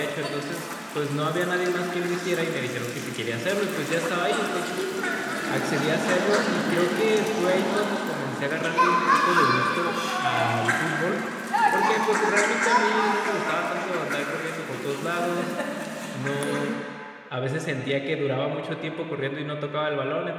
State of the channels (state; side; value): identical; both; correlation 1.00